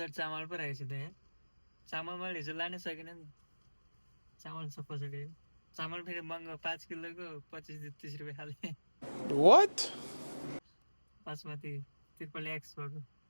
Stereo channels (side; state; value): both; inverted; correlation -1.00